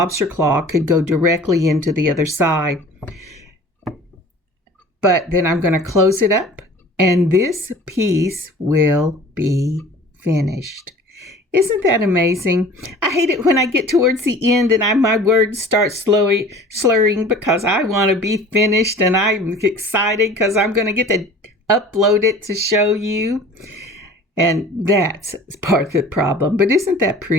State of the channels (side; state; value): both; normal; correlation 0.45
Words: claw could go directly into the other side. But then I'm going to close it up, and this piece will be finished. Isn't that amazing? I hate it when I get towards the end and my words start slurring because I want to be finished, and I'm excited because I'm going to get to upload it to show you. And that's part of the problem. But isn't that